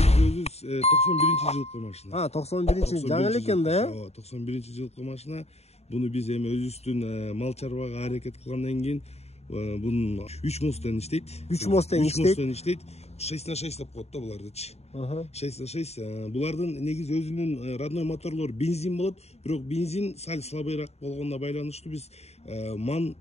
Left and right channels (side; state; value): right; late; 0.31 ms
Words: Өзү 91-жылкы машина. 91 жаңы эле экен да, 91-жылкы машина. Буну биз эми өзүбүздүн мал чарбага аракет кылгандан кийин бунун 3 мостен иштейт. 3 мостен иштейт. 6х6 деп коет да булардычы. 6х6. Булардын негизи өзүнүн родной моторлору бензин болот, бирок бензин сал слабыйраак болгонуна байланыштуу биз ман